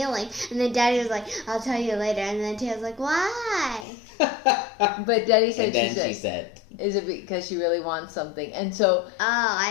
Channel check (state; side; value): drops out; right; at 3.9 s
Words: And then Daddy was like, I'll tell you later. And then Taya's like, why? But Daddy said, she said, is it because she really wants something? And so... Oh,